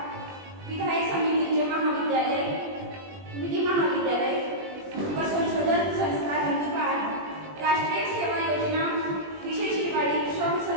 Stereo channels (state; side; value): late; left; 20 ms